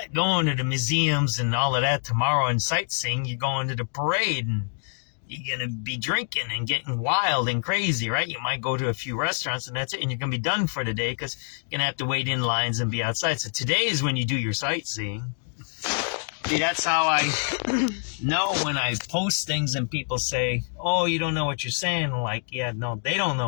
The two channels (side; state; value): right; silent; 61 dB below the other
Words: going to the museums and all of that tomorrow and sightseeing. You're going to the parade and you're going to be drinking and getting wild and crazy, right? You might go to a few restaurants and that's it. And you're going to be done for the day because you're going to have to wait in lines and be outside. So today is when you do your sightseeing. See, that's how I know when I post things and people say, oh, you don't know what you're saying. Like, yeah, no, they don't